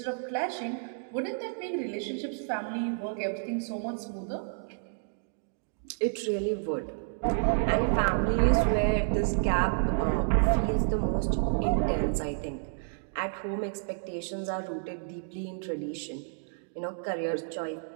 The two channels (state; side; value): silent; left; digital silence